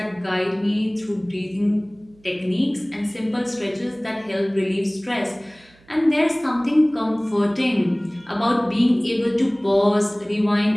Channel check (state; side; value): noise; right; hum, 29 dB below the sound